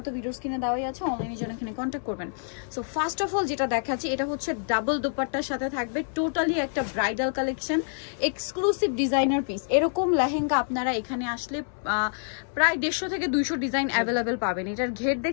তো ভিডিও স্ক্রিনে দেওয়াই আছে, অনলাইনে জন্য এখানে কন্ট্যাক্ট করবেন। সো ফার্স্ট অফ অল যেটা দেখাচ্ছি, এটা হচ্ছে ডাবল দোপাট্টার সাথে থাকবে, টোটালি একটা bridal collection, exclusive designer piece. এরকম লেহেঙ্গা আপনারা এখানে আসলে প্রায় 150 থেকে 200 ডিজাইন অ্যাভেলেবেল পাবেন। এটার ঘের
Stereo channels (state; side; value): silent; right; 60 dB below the other